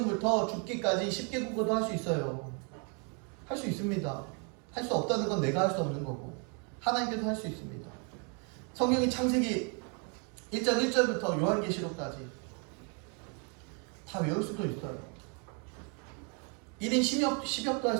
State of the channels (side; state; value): left; quieter; 37.1 dB